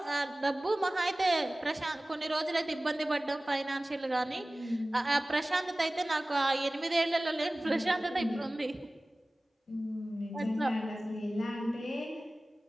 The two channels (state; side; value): normal; both; correlation 0.98